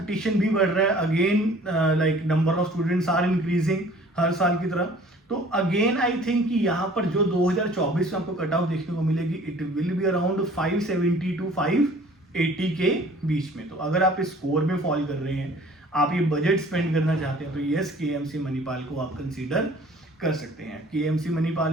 भी बढ़ रहा है, again like number of students are increasing हर साल की तरह। तो अगेन आई थिंक कि यहाँ पर जो 2024 में आपको कट ऑफ देखने को मिलेगी, it will be around 570 to 580 के बीच में। तो अगर आप इस स्कोर में फॉल कर रहे हैं, आप ये बजट स्पेंड करना चाहते हैं, तो यस, केएमसी मणिपाल को आप कंसीडर कर सकते हैं। केएमसी मणिपाल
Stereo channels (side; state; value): both; normal; correlation 0.51